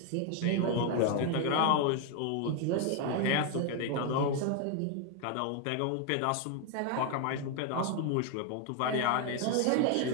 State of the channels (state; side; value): different; both; correlation 0.01